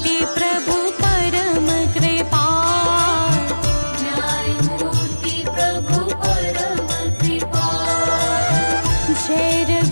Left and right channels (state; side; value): inverted; both; correlation -1.00